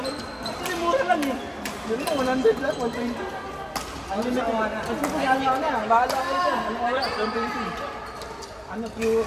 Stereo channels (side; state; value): both; identical; correlation 1.00